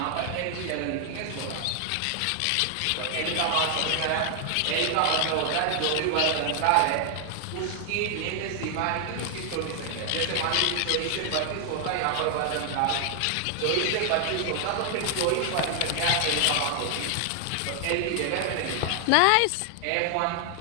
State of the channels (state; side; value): different; both; correlation 0.00